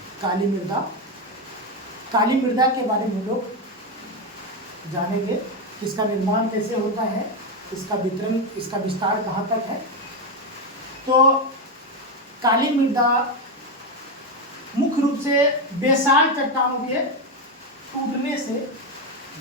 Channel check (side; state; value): both; normal; correlation 0.10